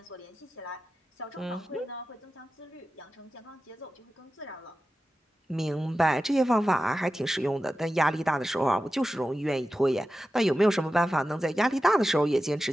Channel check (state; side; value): normal; both; correlation 0.93